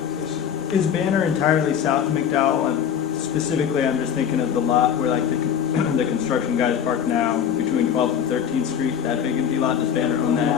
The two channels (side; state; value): right; quieter; 8.5 dB